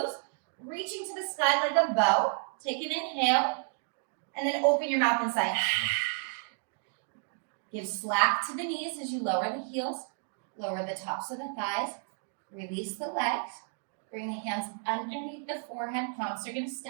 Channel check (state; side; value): silent; left; 57 dB below the other